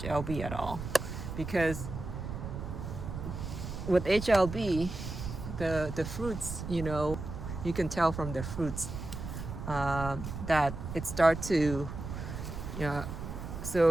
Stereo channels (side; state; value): right; noise; rumble, 7 dB below the sound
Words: at all, because with HLB, the fruits, you can tell from the fruits that it start to,